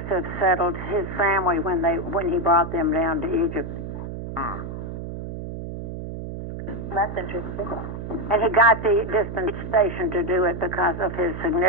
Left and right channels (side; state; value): right; noise; hum, 7 dB below the sound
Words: settled his family when he brought them down to Egypt. That's interesting. And he got the dispensation to do it because of his